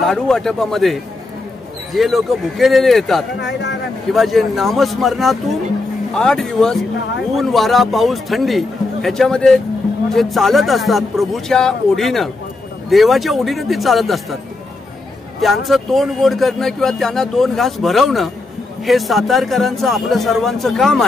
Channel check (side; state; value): right; quieter; 3.3 dB